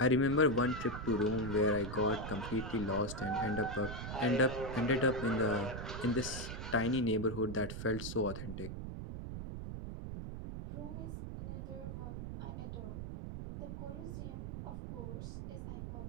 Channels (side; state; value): right; noise; rumble, 7 dB below the sound